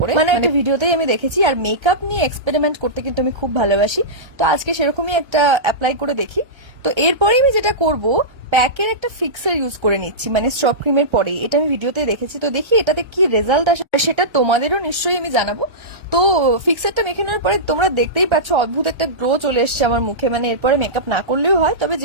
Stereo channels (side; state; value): left; late; 1.3 ms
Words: মানে একটা ভিডিওতেই আমি দেখেছি। আর মেকআপ নিয়ে এক্সপেরিমেন্ট করতে কিন্তু আমি খুব ভালোবাসি, তো আজকে সেরকমই একটা অ্যাপ্লাই করে দেখি। তো এরপরে আমি যেটা করব, প্যাকের একটা ফিক্সার ইউজ করে নিচ্ছি, মানে স্ট্রব ক্রিমের পরে। এটা আমি ভিডিওতে দেখেছি, তো দেখি এটাতে কি রেজাল্ট আসে, সেটা তোমাদেরও নিশ্চয়ই আমি জানাবো। তো ফিক্সারটা মেখে নেওয়ার পরে তোমরা দেখতেই পাচ্ছ অদ্ভুত একটা গ্লো চলে এসছে আমার মুখে। মানে এরপরে মেকআপ না করলেও হয়, তবে